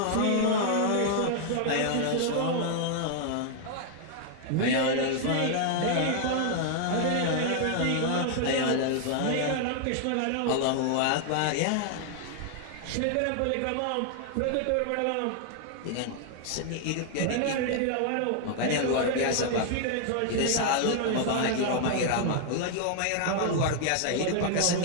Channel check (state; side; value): different; both; correlation 0.00